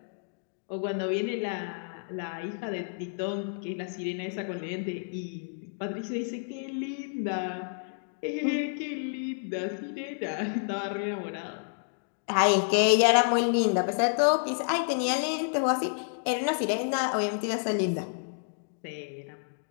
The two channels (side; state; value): right; silent; digital silence